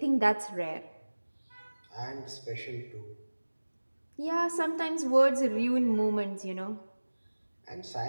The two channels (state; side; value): inverted; both; correlation -1.00